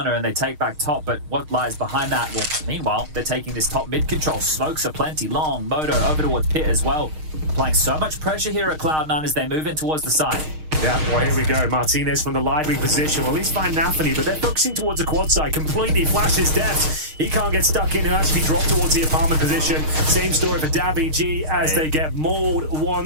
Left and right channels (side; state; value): left; late; 6.4 ms